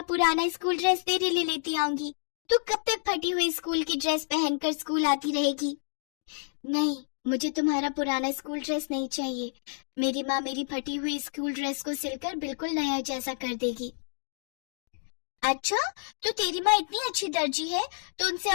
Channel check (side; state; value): right; silent; digital silence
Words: पुराना स्कूल ड्रेस तेरे लिए लेती आऊंगी। तू कब तक फटी हुई स्कूल की ड्रेस पहनकर स्कूल आती रहेगी? नहीं, मुझे तुम्हारा पुराना स्कूल ड्रेस नहीं चाहिए। मेरी माँ मेरी फटी हुई स्कूल ड्रेस को सिलकर बिल्कुल नया जैसा कर देगी। अच्छा, तो तेरी माँ इतनी अच्छी दर्जी है तो उनसे